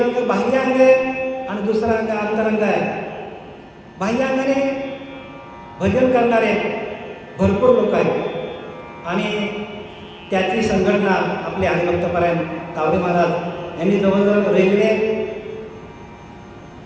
बाह्य अंग आहे आणि दुसरा अंग अंतरंग आहे. बाह्य अंगाने भजन करणारे भरपूर लोक आहेत आणि त्याची संघटना आपले हरिभक्तपरायण तावरे महाराज यांनी जवळजवळ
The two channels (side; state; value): both; identical; correlation 1.00